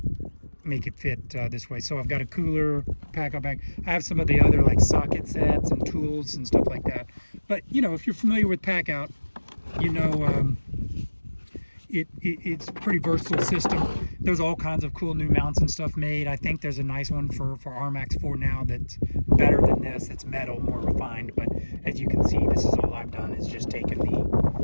make it fit this way. So I've got a cooler Packout bag. I have some of the other like socket sets and tools and stuff like that. But you know, if you're familiar with Packout, you know it's a pretty versatile system. There's all kinds of cool new mounts and stuff made. I think there's a nice one for RMAX 4 now that's better than this. It's metal, more refined. But as you can see, this is all I've done is just taken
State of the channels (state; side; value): inverted; both; correlation -1.00